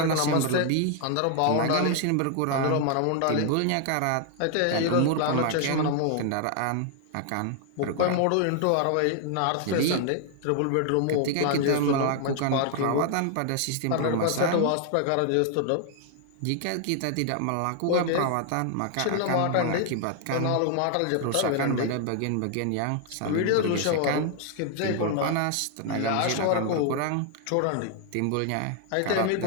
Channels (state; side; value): different; both; correlation 0.00